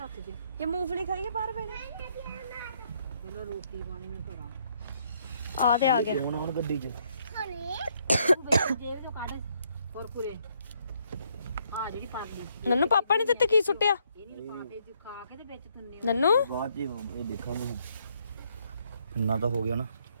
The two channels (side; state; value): both; inverted; correlation -0.71